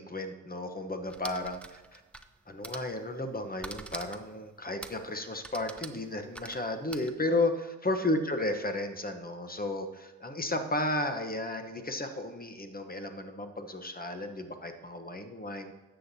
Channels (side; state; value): both; normal; correlation 0.25